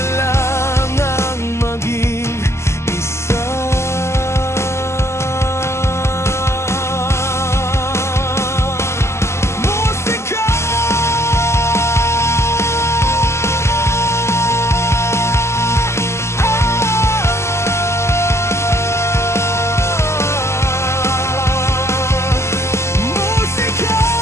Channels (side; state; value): right; late; 0.13 ms